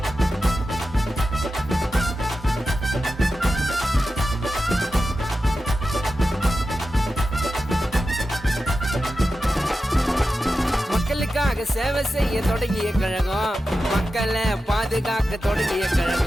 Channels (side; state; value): both; normal; correlation 0.92